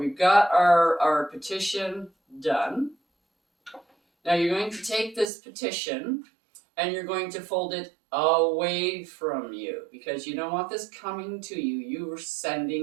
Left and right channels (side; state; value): left; drops out; at 5.2 s